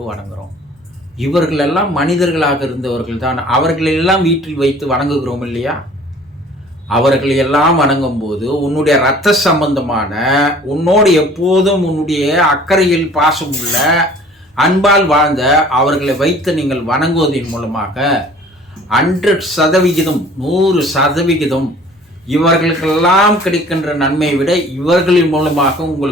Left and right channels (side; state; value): both; normal; correlation 0.50